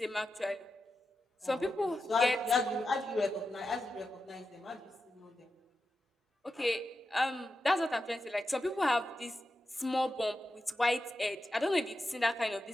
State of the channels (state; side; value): normal; both; correlation 0.90